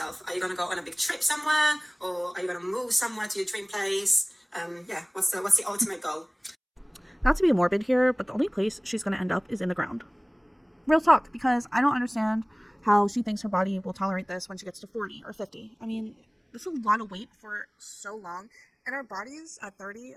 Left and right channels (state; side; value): identical; both; correlation 1.00